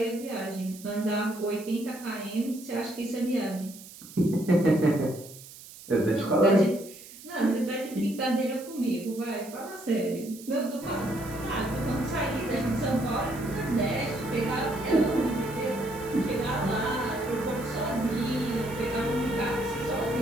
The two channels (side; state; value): right; noise; hiss, 17 dB below the sound